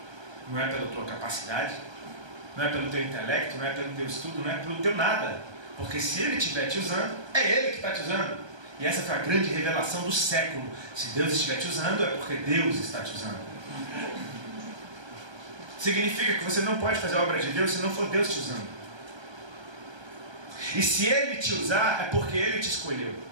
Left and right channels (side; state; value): left; late; 1.3 ms